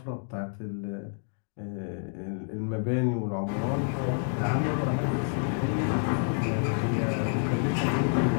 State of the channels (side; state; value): right; silent; 59 dB below the other